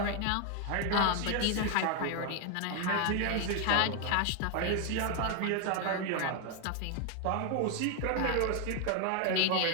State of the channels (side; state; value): both; different; correlation 0.01